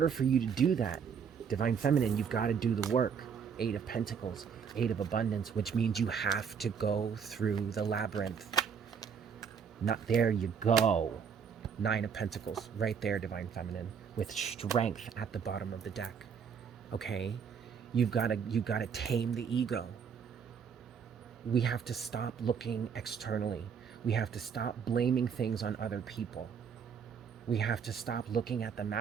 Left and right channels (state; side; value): quieter; left; 6.9 dB